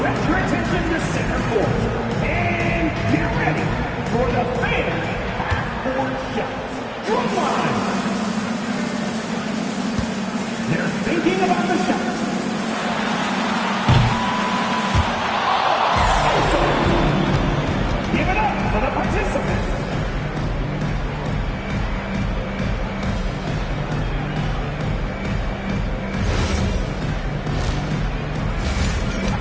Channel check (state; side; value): identical; both; correlation 1.00